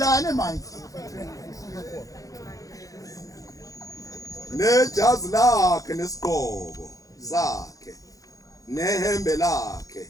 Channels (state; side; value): late; right; 0.17 ms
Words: manje. Nejazi lakhe nesigqoko sakhe nehembe lakhe.